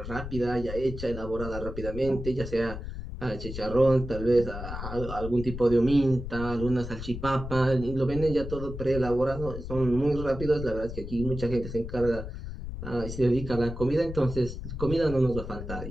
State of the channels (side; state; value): left; noise; rumble, 8 dB below the sound